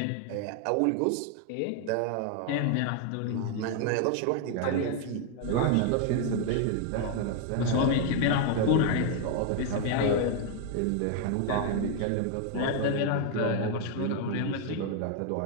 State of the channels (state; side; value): different; both; correlation 0.00